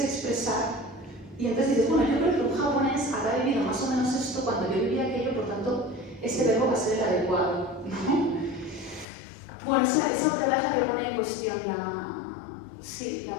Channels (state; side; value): drops out; right; at 9.1 s